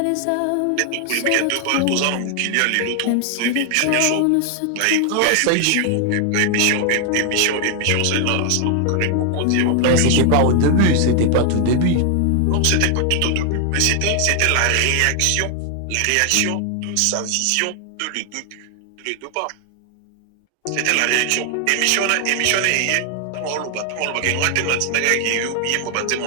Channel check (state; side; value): different; both; correlation 0.00